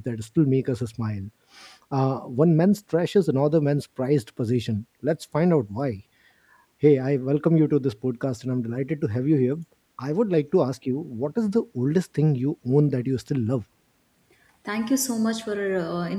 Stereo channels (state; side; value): identical; both; correlation 1.00